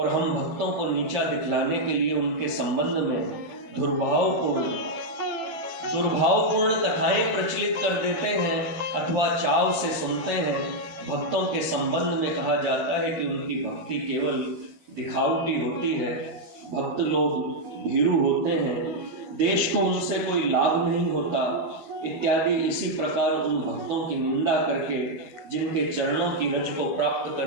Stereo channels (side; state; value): left; late; 12 ms